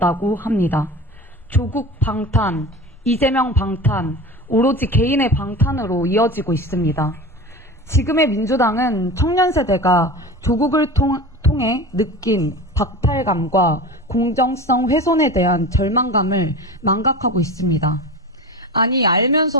합니다. 조국 방탄, 이재명 방탄, 오로지 개인의 방탄으로 이어지고 있습니다. 지금의 민주당은 청년 세대가 조국을 통해 느낀 박탈감과 공정성 훼손에 대한 절망감을 망각하고 있습니다. 아니,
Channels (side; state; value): both; normal; correlation 0.31